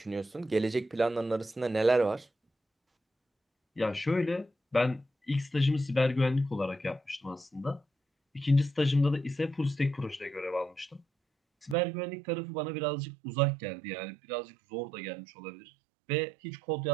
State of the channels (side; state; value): left; drops out; at 11.8 s